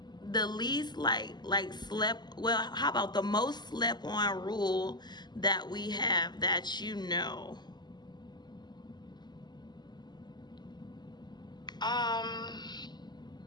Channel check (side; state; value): right; late; 0.21 ms